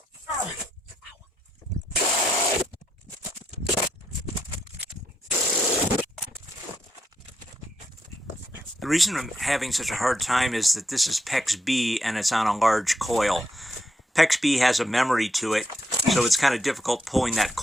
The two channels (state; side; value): normal; both; correlation 0.80